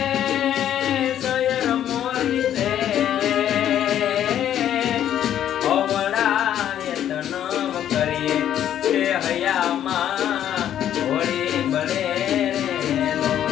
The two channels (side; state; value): right; quieter; 10.7 dB